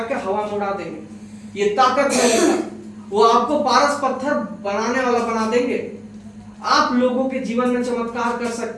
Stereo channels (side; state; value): both; identical; correlation 1.00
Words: के हवा में उड़ा देंगे। ये ताकत है, वो आपको पारस पत्थर बनाने वाला बना देंगे। आप लोगों के जीवन में चमत्कार कर